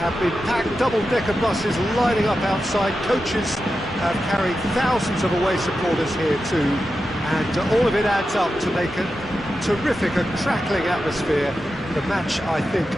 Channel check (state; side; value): normal; both; correlation 0.90